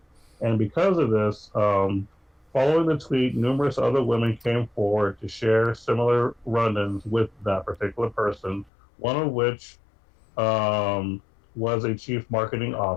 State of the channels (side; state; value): right; drops out; at 8.7 s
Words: And because of this, following the tweet, numerous other women came forward to share similar run ins with that particular person, one of which um, was a chief marketing